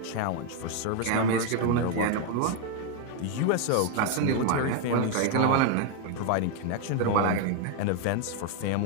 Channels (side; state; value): both; different; correlation 0.01